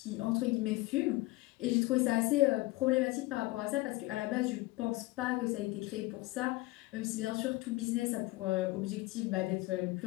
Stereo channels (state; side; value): quieter; right; 20.4 dB